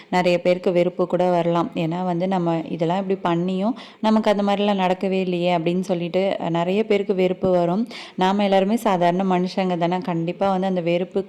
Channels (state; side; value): identical; both; correlation 1.00